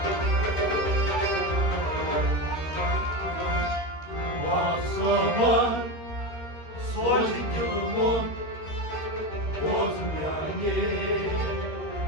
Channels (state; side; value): late; right; 13 ms